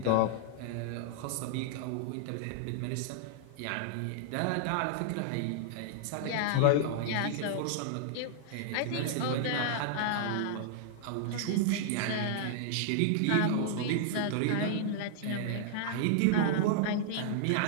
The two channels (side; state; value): both; different; correlation -0.01